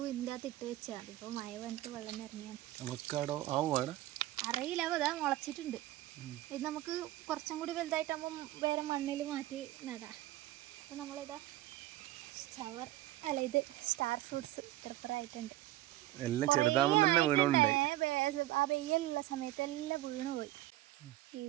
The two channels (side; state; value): left; quieter; 16.0 dB